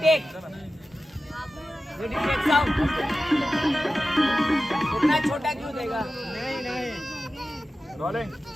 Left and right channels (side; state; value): both; normal; correlation 0.94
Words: टेक साउंड। इतना छोटा क्यों देगा? नहीं rolling